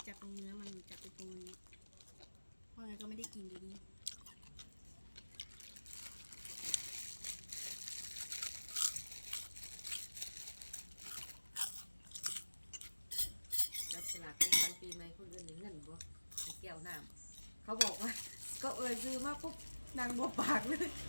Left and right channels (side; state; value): both; inverted; correlation -1.00